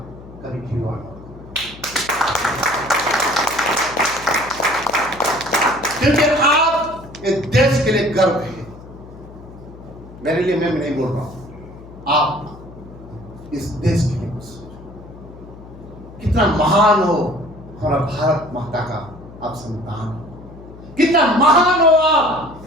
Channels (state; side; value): noise; left; hum, 18 dB below the sound